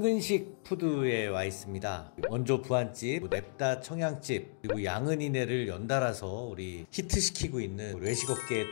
푸드에 와 있습니다. 원조 부안집, 냅다 청양집, 그리고 양은이네를 연달아서 우리 히트시키고 있는 외식업계에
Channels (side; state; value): right; silent; digital silence